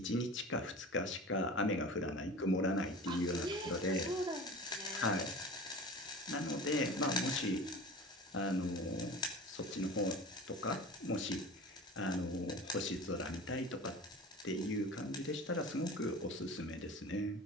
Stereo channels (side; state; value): both; normal; correlation 0.36